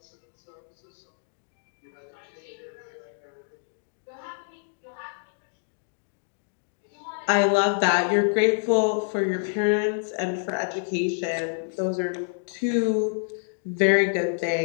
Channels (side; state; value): right; silent; digital silence